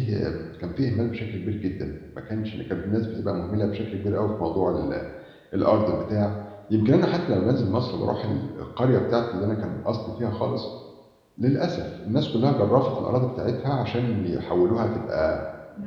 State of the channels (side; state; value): both; identical; correlation 1.00